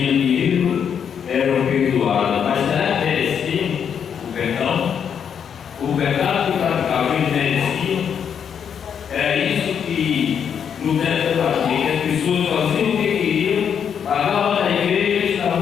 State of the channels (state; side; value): quieter; right; 7.8 dB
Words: dinheiro, eram perdoadas. Mas será que mereciam o perdão? O pecado que praticava eles mereciam? Era isso que Lutero fazia, que as pessoas faziam o que queriam, pagavam na igreja e